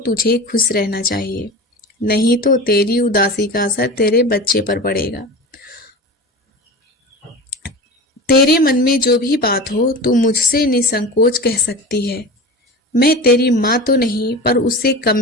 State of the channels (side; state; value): both; normal; correlation 0.31